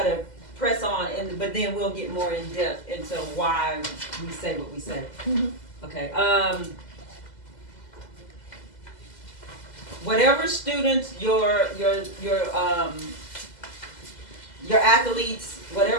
to press on, but then we'll get more in depth into why we say what we say. Okay. Whatever students your athletes,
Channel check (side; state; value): right; late; 2.0 ms